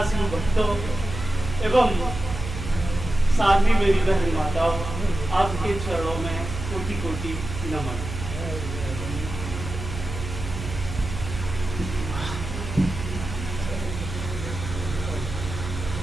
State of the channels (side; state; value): right; noise; hum, 7 dB below the sound